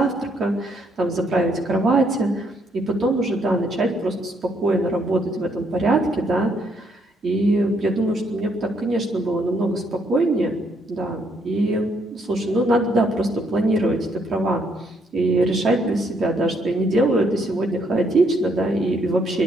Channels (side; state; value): both; normal; correlation 0.72